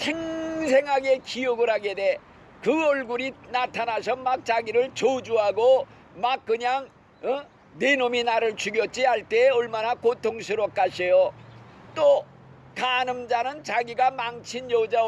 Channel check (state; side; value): identical; both; correlation 1.00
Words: 기억을 하게 돼. 그 얼굴이 나타나서 막 자기를 저주하고 막 그냥 내 놈이 나를 죽였지 할 때 얼마나 고통스럽겠어요. 또 간음자는 자기가 망친 여자